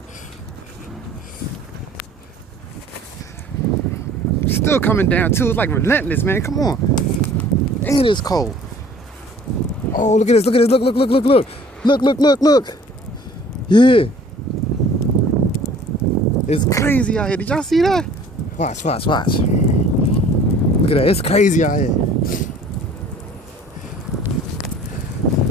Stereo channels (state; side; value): normal; both; correlation 0.51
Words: Still coming down too. It's like relentless, man. Come on. And it's cold. Oh, look at this. Look at this. Look, look, look, look, look. Look, look, look, look. Yeah. It's crazy out here. Did y'all see that? Watch, watch, watch. Look at that. It's crazy out here.